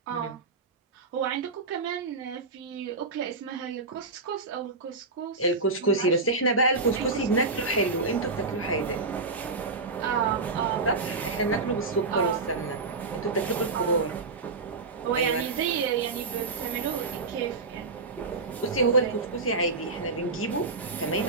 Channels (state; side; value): quieter; left; 3.8 dB